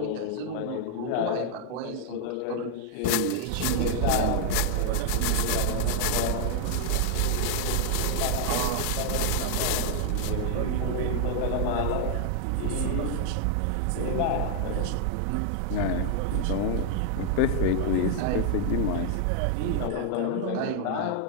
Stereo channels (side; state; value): both; different; correlation 0.00